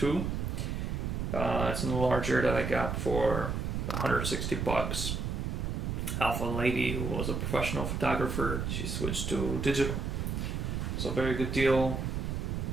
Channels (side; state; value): right; noise; rumble, 2 dB below the sound